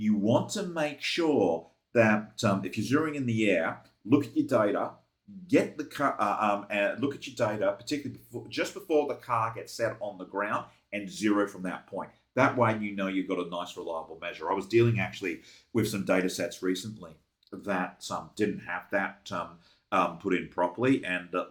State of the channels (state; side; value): identical; both; correlation 1.00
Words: want to make sure that if you're zeroing in the air, look at your data. Get the car and look at your data, particularly just before the car gets set on the ground, and zero from that point. That way, you know you've got a nice, reliable measure. I was dealing actually with some data sets recently that didn't have that put in properly, and